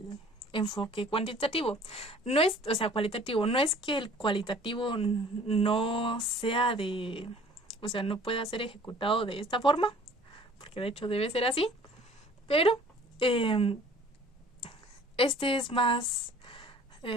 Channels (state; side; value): normal; both; correlation 0.51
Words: enfoque cuantitativo, no es, o sea, cualitativo, no es que el cualitativo no sea de, o sea, no pueda ser ejecutado de esta forma, porque de hecho debe ser así, pero este es más